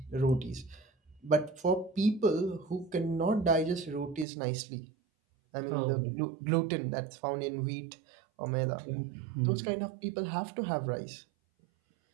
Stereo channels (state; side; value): drops out; left; at 4.2 s